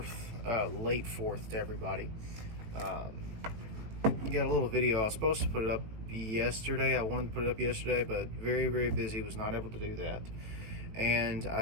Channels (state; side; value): late; left; 18 ms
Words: late 4th to everybody. Got a little video. I was supposed to put it up yesterday. I wanted to put it up yesterday, but very busy, was not able to do that. And